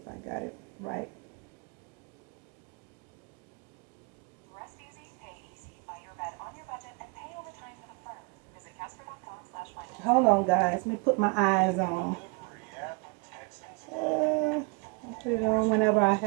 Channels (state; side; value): quieter; left; 31.9 dB